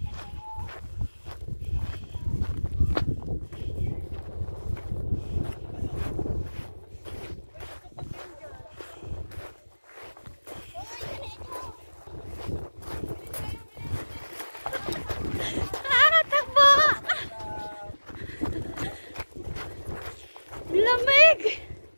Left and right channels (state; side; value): inverted; both; correlation -1.00